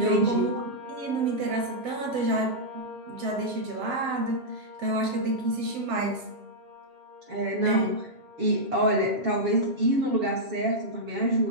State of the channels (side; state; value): left; late; 7.8 ms